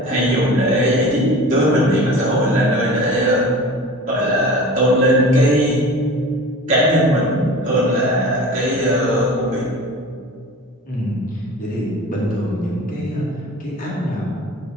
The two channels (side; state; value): both; normal; correlation 0.38